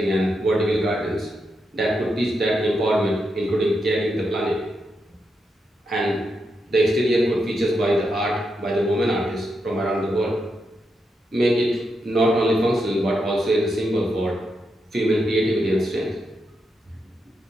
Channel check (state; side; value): normal; both; correlation 0.84